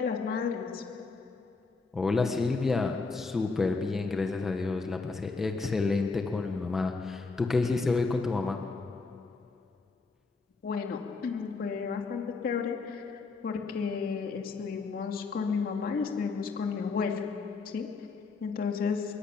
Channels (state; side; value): quieter; right; 4.2 dB